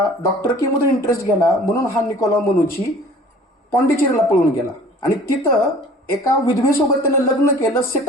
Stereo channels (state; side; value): normal; both; correlation 0.48